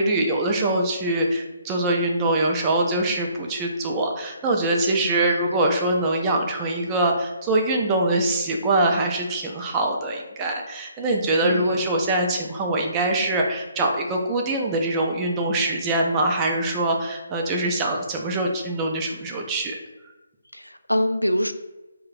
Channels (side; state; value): both; inverted; correlation -0.58